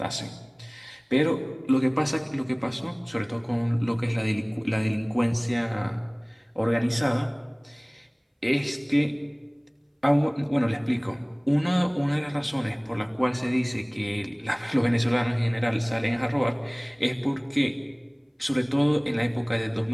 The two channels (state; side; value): identical; both; correlation 1.00